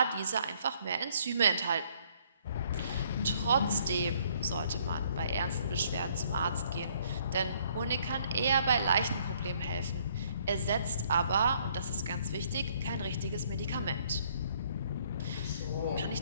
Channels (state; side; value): inverted; both; correlation -0.64